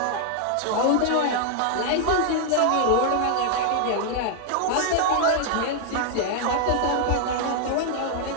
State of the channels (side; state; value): both; different; correlation 0.00